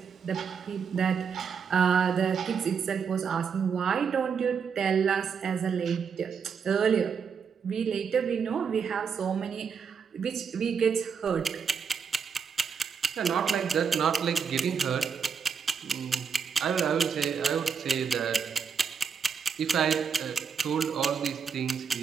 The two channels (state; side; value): quieter; left; 6.5 dB